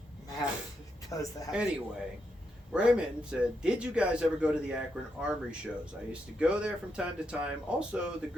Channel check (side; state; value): both; normal; correlation 0.82